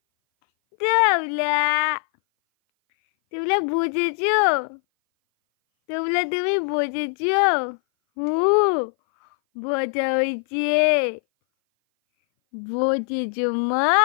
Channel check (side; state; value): right; silent; 59 dB below the other